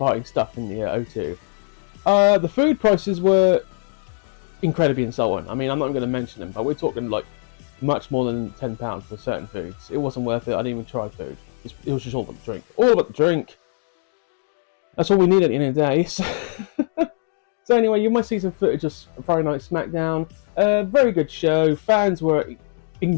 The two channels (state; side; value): silent; right; digital silence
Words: stuff in the O2. The food prices were incredibly insulting. I mean, I'm not going to mention them, but we're talking like much more than £10 for certain foods. It wasn't worth it. I didn't even try food. It was just all about the drink. All about the drink. That's all we need at the end of the day. So anyway, you might see some footage of Friday Night Smackdown. Very good show. Fans were